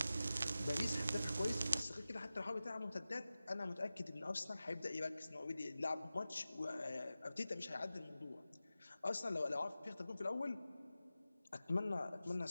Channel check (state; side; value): inverted; both; correlation -0.95